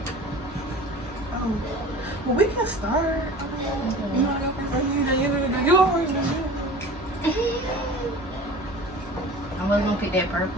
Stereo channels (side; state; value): both; normal; correlation 0.39